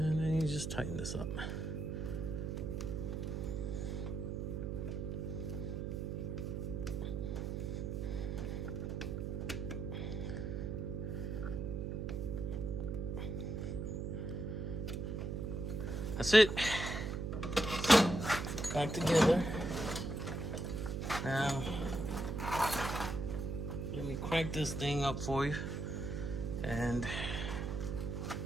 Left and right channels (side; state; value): right; noise; hum, 3 dB below the sound